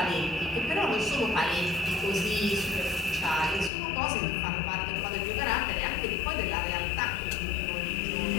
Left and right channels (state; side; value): drops out; right; at 3.7 s